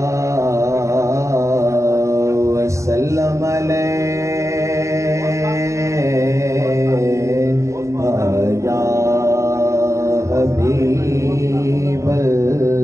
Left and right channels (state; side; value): late; left; 0.15 ms